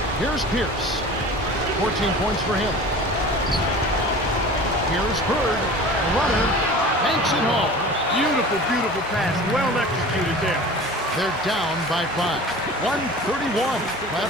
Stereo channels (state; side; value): normal; both; correlation 0.39